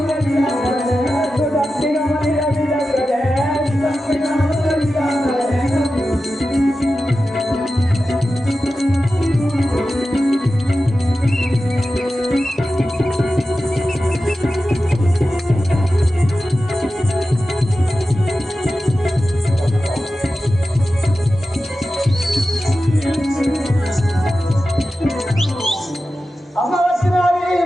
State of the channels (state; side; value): normal; both; correlation 0.93